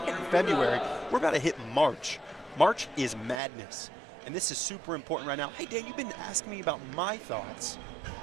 February. We're about to hit March. March is madness. And this is super important right now. Hey, Dan, you've been asking me about my thoughts.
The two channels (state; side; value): drops out; left; at 3.4 s